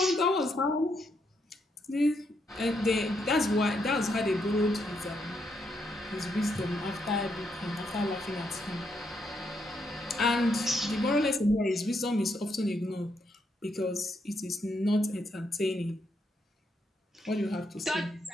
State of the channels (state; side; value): normal; both; correlation 0.78